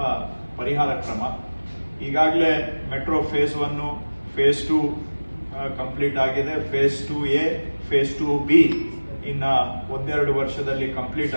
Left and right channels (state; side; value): inverted; both; correlation -1.00